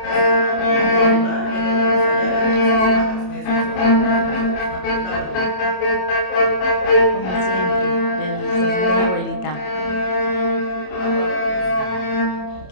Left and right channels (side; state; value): right; late; 27 ms